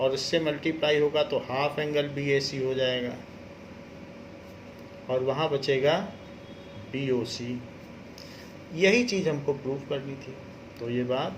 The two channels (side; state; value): both; identical; correlation 1.00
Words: और इससे मल्टीप्लाई होगा तो हाफ एंगल BAC हो जाएगा, और वहाँ बचेगा BOC। यही चीज़ हमको प्रूव करनी थी, तो ये बात